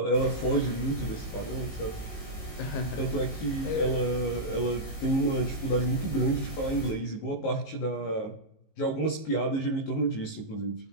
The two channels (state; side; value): late; right; 19 ms